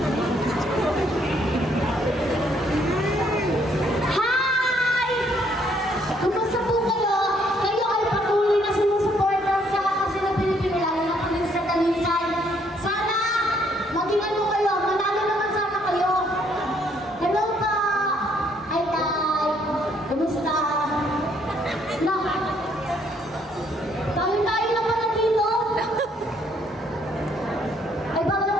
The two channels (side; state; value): both; normal; correlation 0.68